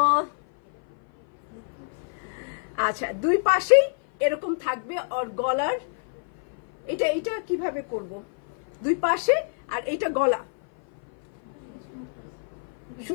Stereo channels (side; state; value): right; silent; 56 dB below the other